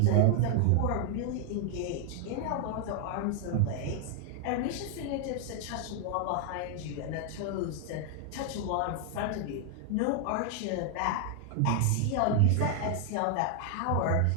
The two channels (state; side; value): different; both; correlation 0.00